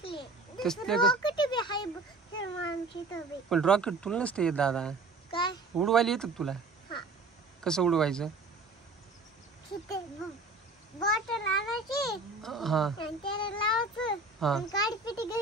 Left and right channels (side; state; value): left; quieter; 3.4 dB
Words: तसले रॉकेट बी हाय श्रीमामची तर. पण रॉकेट तुला नसते येत दादा. काय उडवायला येतं तुला? हा. कसं उडवायचं? बॉटल आणायची हा आणि त्याला लावायचं हा आणि काडी पिटी